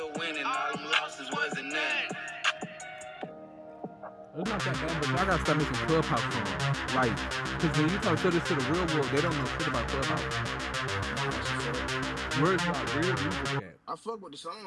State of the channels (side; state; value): both; identical; correlation 1.00